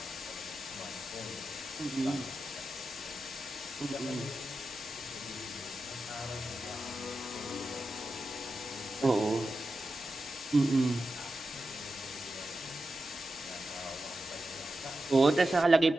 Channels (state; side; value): normal; both; correlation 0.91